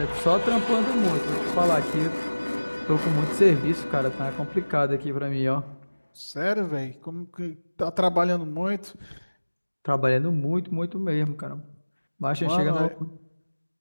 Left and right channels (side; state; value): both; inverted; correlation -1.00